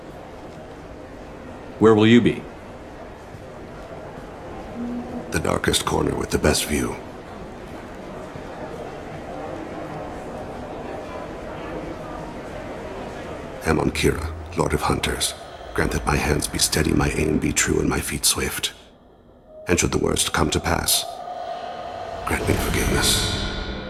Where will you be? The darkest corner with the best view. Amon Kira, Lord of Hunters. Grant that my hands be steady, my aim be true, and my feet swift. And should the worst come to pass, grant me forgiveness.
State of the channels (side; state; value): both; identical; correlation 1.00